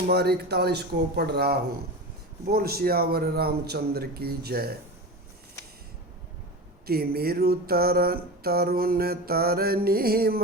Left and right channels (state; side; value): normal; both; correlation 0.26